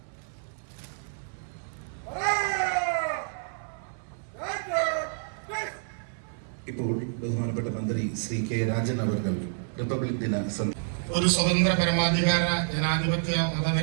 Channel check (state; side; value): silent; left; 59 dB below the other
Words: ഇപ്പോൾ ബഹുമാനപ്പെട്ട മന്ത്രി ശ്രീ കെ രാജൻ അവർ റിപ്പബ്ലിക് ദിന ഒരു സ്വതന്ത്ര പരമാധികാര ജനാധിപത്യ